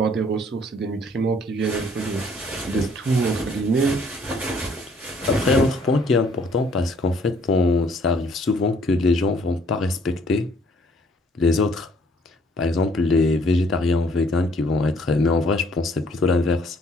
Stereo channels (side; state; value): both; normal; correlation 0.62